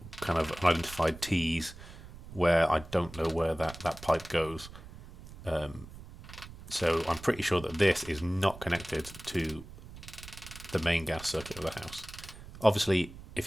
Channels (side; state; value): right; noise; rumble, 16 dB below the sound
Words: kind of unidentified T's where I don't know where that pipe goes. So I'm pretty sure that this is not connected to the main gas circuit of the house. Obviously,